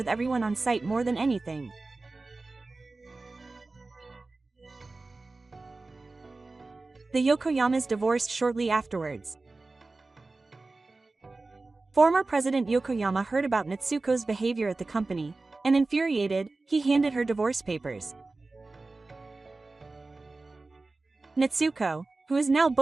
everyone on site more than anything. The Yokoyamas divorced shortly afterwards. Former President Yokoyama heard about Natsuko's behavior at the company, and infuriated, he handed her divorce papers. Natsuko, who is now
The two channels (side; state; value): left; quieter; 3.4 dB